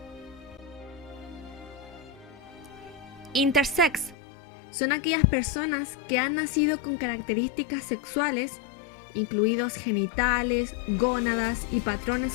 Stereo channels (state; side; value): drops out; right; at 4.2 s